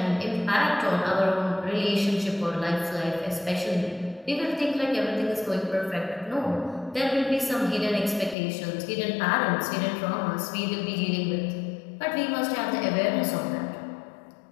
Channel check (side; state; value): right; drops out; at 8.3 s